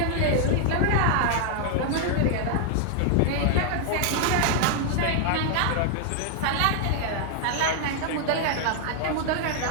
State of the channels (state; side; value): different; both; correlation 0.00